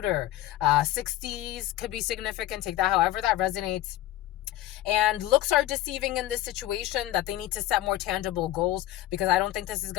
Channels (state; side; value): quieter; right; 14.9 dB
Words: 60s could be significant. Take that however that resonates. And looks are deceiving in this situation, that they need to set more tangible goals, because I don't think this is